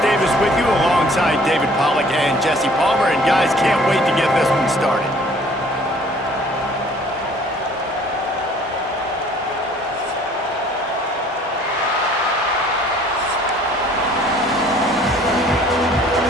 Davis with you alongside David Pollack and Jesse Palmer. And guys, can't wait to get this one started.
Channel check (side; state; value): both; normal; correlation 0.55